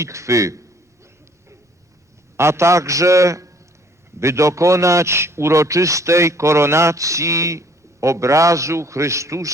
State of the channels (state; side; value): normal; both; correlation 0.59